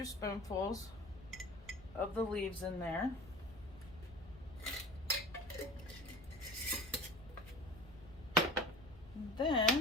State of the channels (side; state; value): left; noise; rumble, 19 dB below the sound